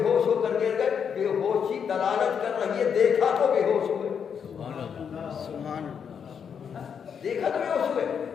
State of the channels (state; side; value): quieter; right; 7.2 dB